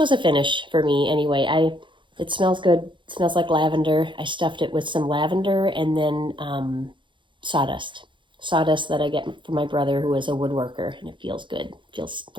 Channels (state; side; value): late; left; 0.23 ms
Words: a finish for me anyway. It smells good. It smells like lavender. I stuffed it with some lavender and then sawdust that I get from my brother, who is a woodworker, and it feels good. It feels